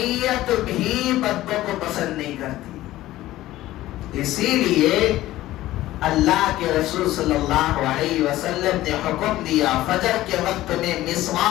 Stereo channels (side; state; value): right; quieter; 15.7 dB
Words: بھی بدبو کو پسند نہیں کرتی، اسی لیے اللہ کے رسول صلی اللہ علیہ وسلم نے حکم دیا فجر کے وقت میں